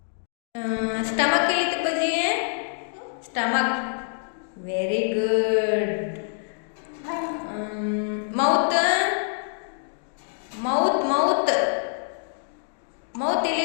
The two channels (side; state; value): right; silent; digital silence